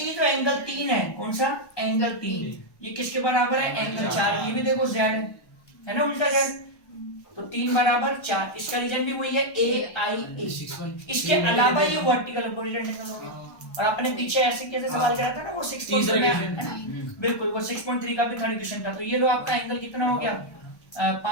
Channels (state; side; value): late; right; 1.1 ms